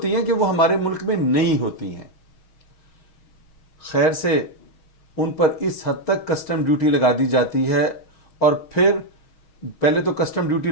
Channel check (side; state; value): right; late; 6.3 ms